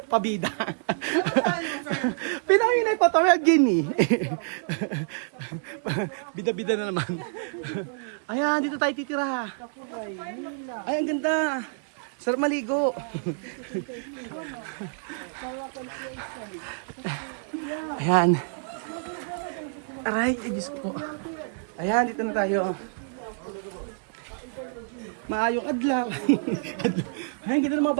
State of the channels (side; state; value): left; silent; digital silence